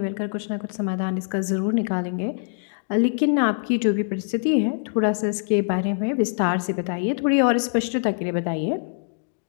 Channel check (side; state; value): right; silent; digital silence